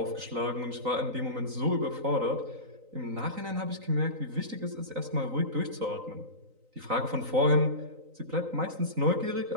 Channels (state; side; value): late; left; 3.9 ms